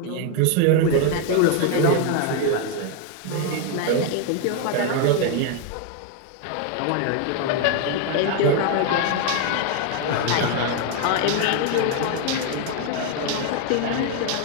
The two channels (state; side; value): different; both; correlation 0.00